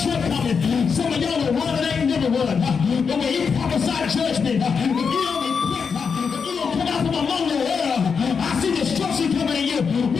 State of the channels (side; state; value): right; quieter; 5.9 dB